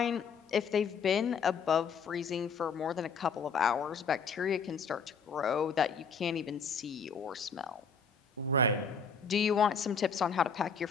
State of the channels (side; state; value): right; quieter; 5.4 dB